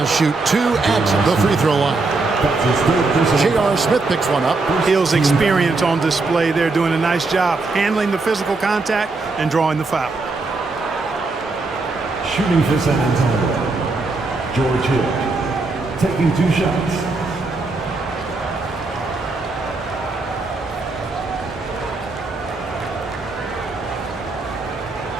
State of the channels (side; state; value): left; quieter; 3.6 dB